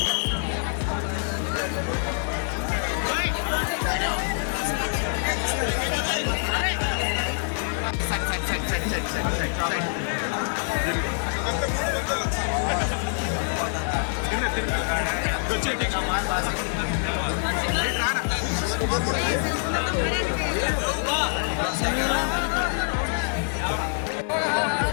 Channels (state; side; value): silent; right; digital silence